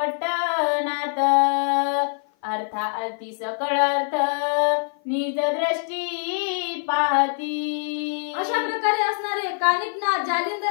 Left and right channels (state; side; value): silent; right; 56 dB below the other